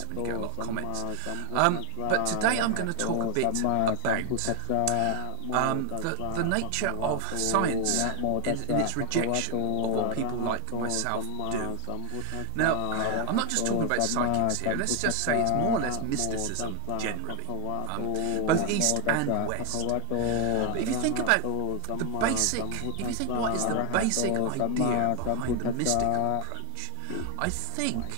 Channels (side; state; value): both; different; correlation 0.00